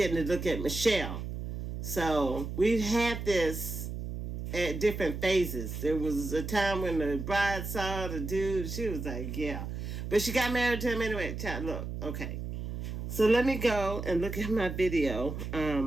to look at Michelle. So we've had this at different phases. There was a time when the bride saw the dude. She was like, yeah. But she got married to him anyway. Child, look, okay. So let me go and look at my video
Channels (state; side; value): noise; right; hum, 6 dB below the sound